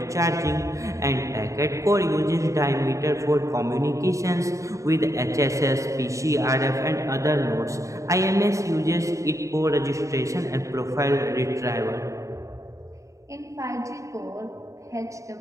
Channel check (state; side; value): late; left; 0.15 ms